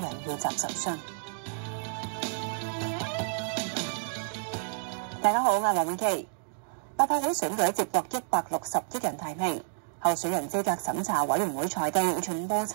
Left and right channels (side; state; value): left; silent; digital silence